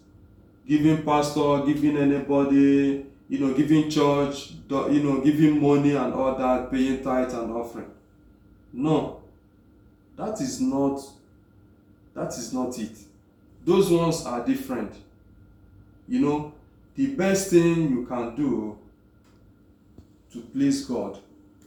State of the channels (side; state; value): both; identical; correlation 1.00